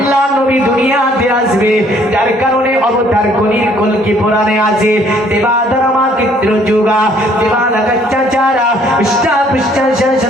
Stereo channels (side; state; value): both; normal; correlation 0.61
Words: নবী দুনিয়াতে আসবে, যার কারণে অবতার কলকি পুরাণে আছে দেবাধর্মা চিত্র যুগা দেবানা কচ্চাচারা ইষ্টা পৃষ্ঠা